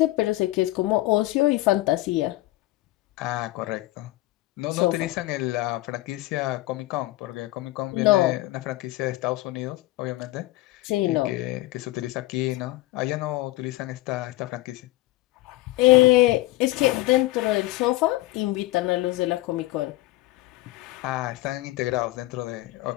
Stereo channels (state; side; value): quieter; right; 18.4 dB